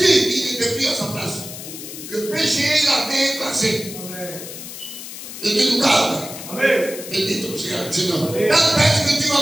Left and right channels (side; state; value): left; noise; hiss, 11 dB below the sound